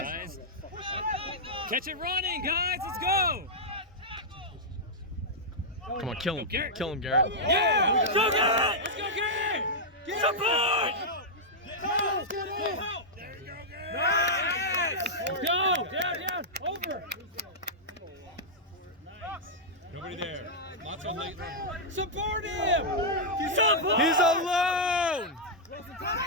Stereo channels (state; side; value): normal; both; correlation -0.08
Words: Catch it running, guys. Let's go. Come on, kill him. Garrett. Kill him, Garrett. Yeah! Go, Garrett! Let's go, Garrett! Support! Go! Down! Over! Nobody there. Lots on Littleton. Support him! Support! He's alone!